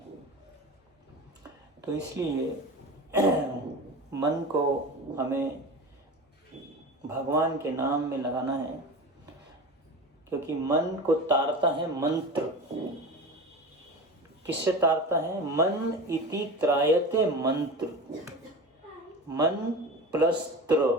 तो इसलिए मन को हमें भगवान के नाम में लगाना है, क्योंकि मन को तारता है मंत्र। किससे तारता है? मन इति त्रायते मंत्र। मन प्लस त्र,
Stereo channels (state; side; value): normal; both; correlation 0.31